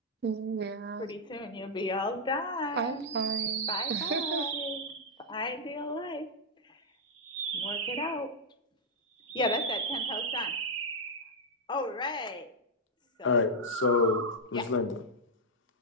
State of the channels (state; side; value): normal; both; correlation -0.04